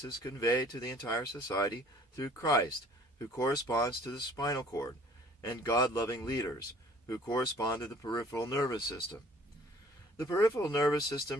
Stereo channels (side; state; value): both; normal; correlation 0.53